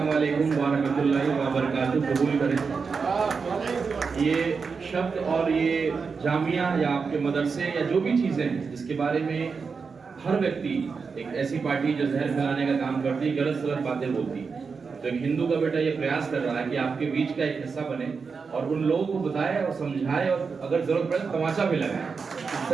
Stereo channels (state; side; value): quieter; left; 5.2 dB